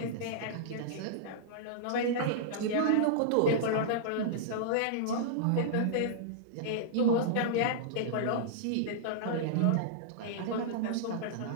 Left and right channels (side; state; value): both; different; correlation -0.02